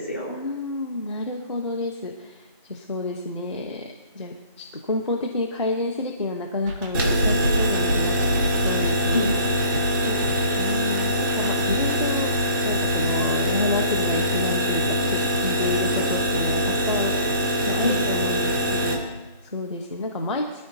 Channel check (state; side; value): inverted; both; correlation -0.50